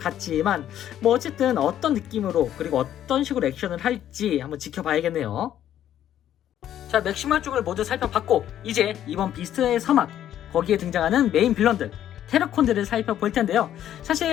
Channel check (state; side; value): quieter; right; 11.2 dB